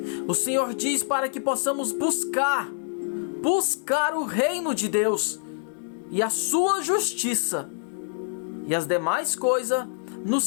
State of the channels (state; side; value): silent; right; digital silence